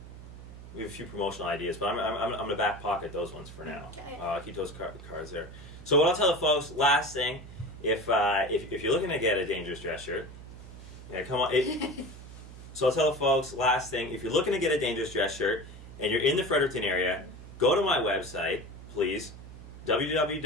few promotional ideas, but I'm going to back pocket those ones for now. Okay. I'll keep those cards there. So what I'll tell the folks, last thing, if you're looking to get a dangerous dress shirt, come on. So I'll tell the folks, last thing, if you're looking to get a dangerous dress shirt and you're in the Fredericton area, go to my website, please,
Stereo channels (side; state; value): right; noise; hum, 15 dB below the sound